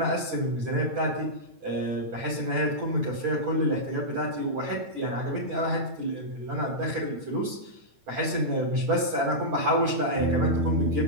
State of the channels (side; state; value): left; late; 8.9 ms